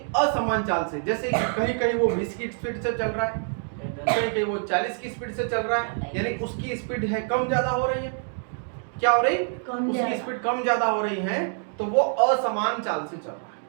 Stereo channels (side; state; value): left; silent; 61 dB below the other